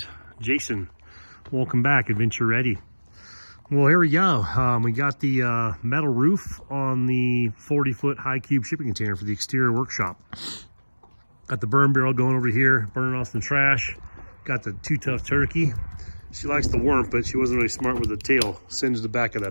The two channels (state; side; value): inverted; both; correlation -1.00